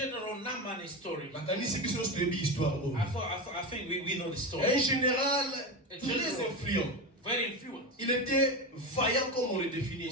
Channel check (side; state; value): both; normal; correlation 0.19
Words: Naaman story. I think we know the story. Un général très influent. Very influent. Il était vaillant comme on le définit. He